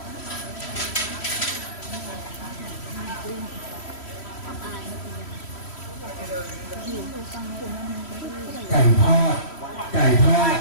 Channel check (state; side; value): late; right; 3.1 ms